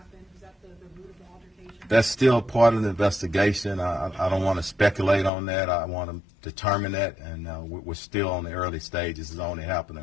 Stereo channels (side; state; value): right; drops out; at 5.3 s